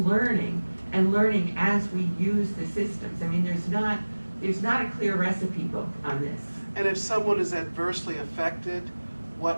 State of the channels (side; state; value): both; inverted; correlation -1.00